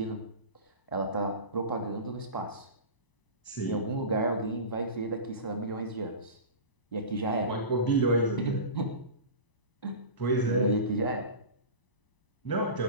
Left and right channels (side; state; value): right; late; 1.0 ms